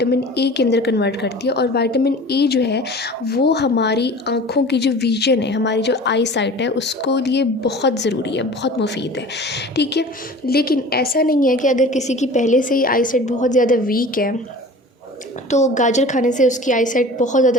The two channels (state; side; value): normal; both; correlation 0.41